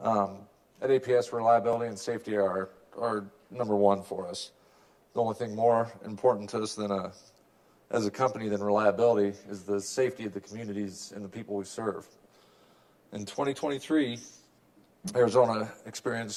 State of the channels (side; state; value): both; identical; correlation 1.00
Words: At APS, reliability and safety are number one for us. The only thing more important to us as a company than reliability is the safety of the communities and the people we serve. In 2023, Arizona